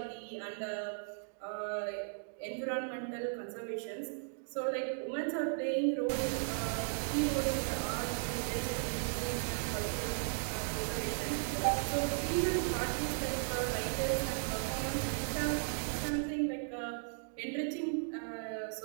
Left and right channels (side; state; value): left; silent; digital silence